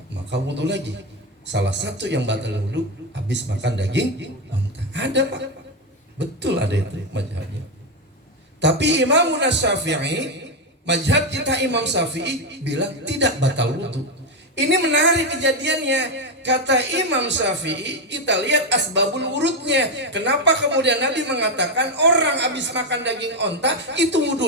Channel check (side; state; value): both; normal; correlation 0.08